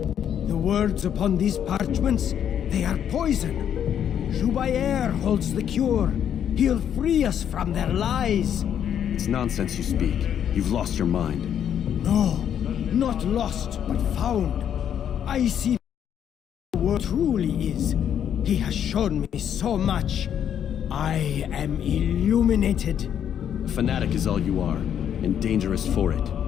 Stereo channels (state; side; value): quieter; right; 9.2 dB